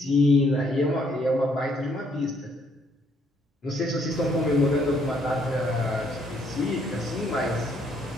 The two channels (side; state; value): both; normal; correlation 0.68